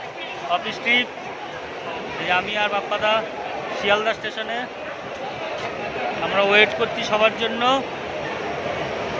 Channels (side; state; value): both; identical; correlation 1.00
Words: অফিস ট্রিপ। এই আমি আর বাপ্পাদা শিয়ালদা স্টেশনে আমরা ওয়েট করছি সবার জন্য।